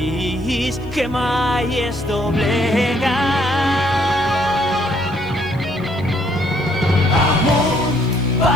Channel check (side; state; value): right; noise; hiss, 30 dB below the sound